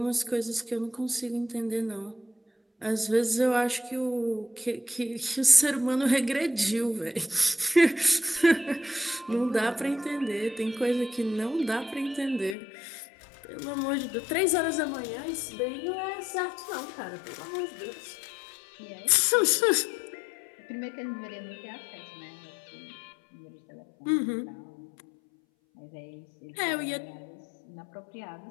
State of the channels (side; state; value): right; drops out; at 12.6 s